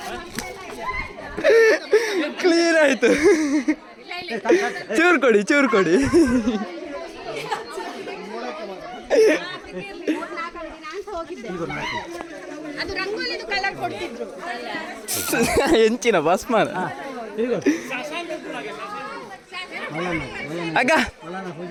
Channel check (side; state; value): both; identical; correlation 1.00